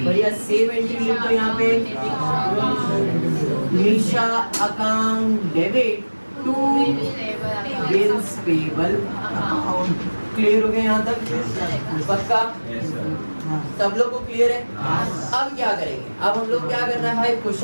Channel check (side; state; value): both; inverted; correlation -1.00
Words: बढ़िया सेव एंट्री लिखो यहाँ पे, Nisha account debit to bills payable account, clear हो गया यहाँ तक? पक्का? सब लोग को क्लियर है? अब क्या करेंगे? अब हम लोग क्या करना है भाई,